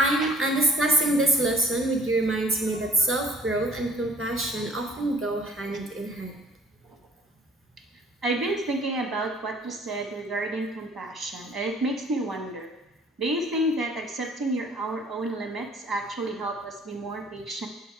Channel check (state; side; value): normal; both; correlation 0.53